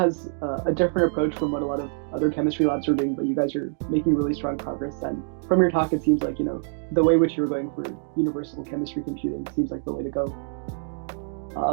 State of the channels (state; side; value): silent; left; digital silence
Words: a different approach from what a lot of other chemistry labs are doing, but you guys are making really strong progress. And from your talk, it seems like, the way which you're going for universal chemistry computing seems like the way to go.